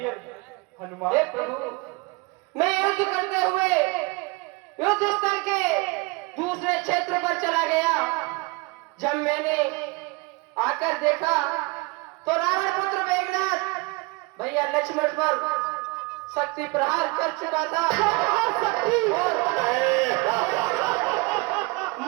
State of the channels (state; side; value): quieter; left; 26.2 dB